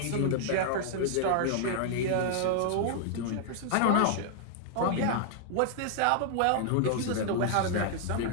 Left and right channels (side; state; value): both; different; correlation -0.01